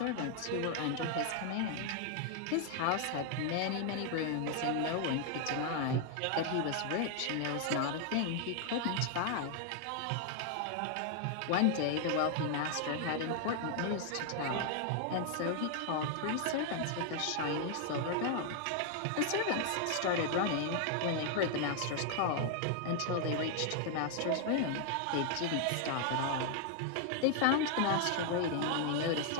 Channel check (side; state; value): both; different; correlation 0.00